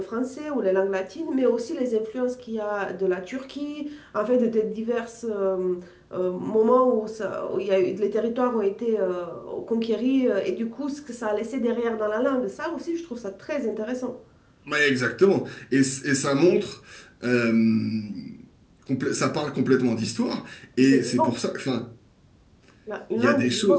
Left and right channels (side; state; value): both; identical; correlation 1.00